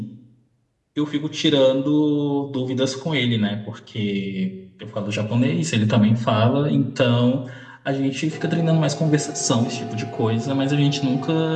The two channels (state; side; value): identical; both; correlation 1.00